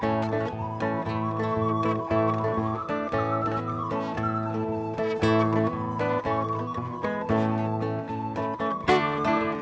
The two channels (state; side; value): identical; both; correlation 1.00